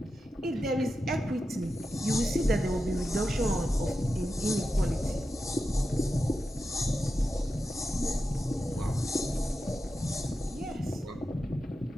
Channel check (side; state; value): both; normal; correlation 0.90